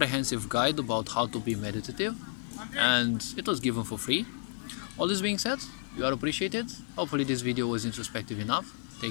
guide about how to be meditative, and it was given for free. All this being said, you are appreciated. Hopefully this video was introspective enough.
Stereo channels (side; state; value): right; silent; digital silence